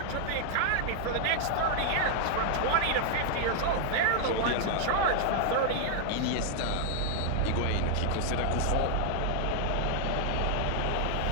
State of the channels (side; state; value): both; different; correlation 0.00